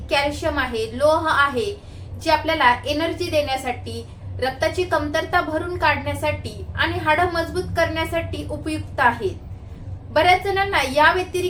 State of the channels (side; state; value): both; identical; correlation 1.00